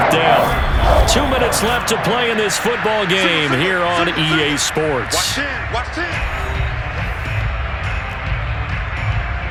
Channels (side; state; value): both; identical; correlation 1.00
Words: down. 2 minutes left to play in this football game here on EA Sports. Watch